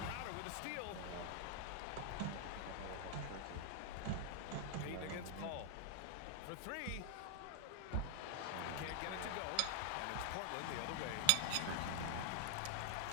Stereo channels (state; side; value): different; both; correlation 0.00